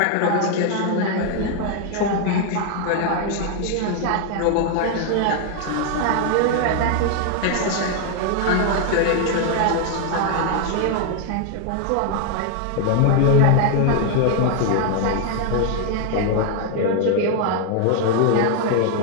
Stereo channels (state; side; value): different; both; correlation 0.00